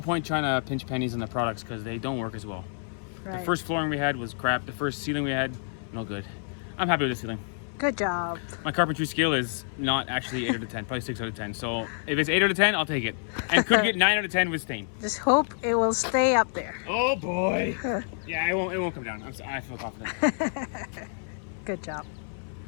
point trying to pinch pennies on the products because they don't work as well. Right. The first flooring we had was crap. The first ceiling we had, no good. I'm happy with the ceiling. Good job. My carpentry skill is not actually 8 out of 10, probably 6 out of 10. So if it's 8 out of 10, I'll take it. And could get 9 out of 10 with stain. Just hope it will stay up there. Oh boy. Yeah, it won't come down. I feel confident. Good job.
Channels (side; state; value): right; silent; 58 dB below the other